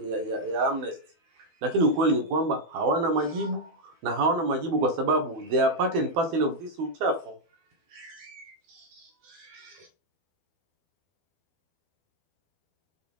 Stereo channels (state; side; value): late; left; 12 ms